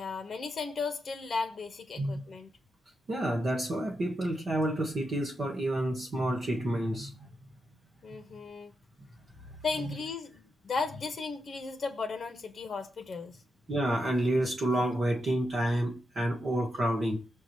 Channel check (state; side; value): normal; both; correlation 0.85